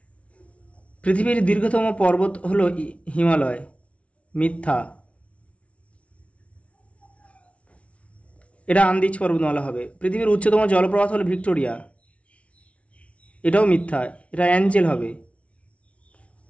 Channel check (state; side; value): late; right; 0.063 ms